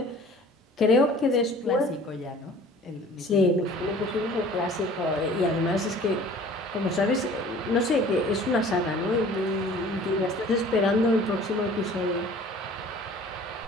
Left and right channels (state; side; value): normal; both; correlation 0.48